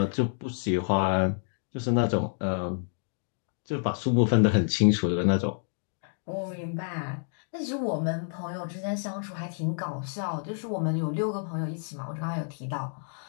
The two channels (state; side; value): silent; right; 59 dB below the other